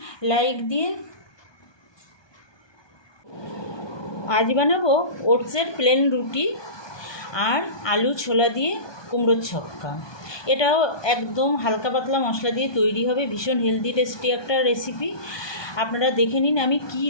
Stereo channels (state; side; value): late; right; 1.2 ms